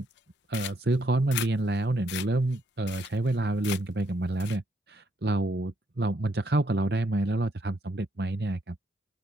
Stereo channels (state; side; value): normal; both; correlation 0.73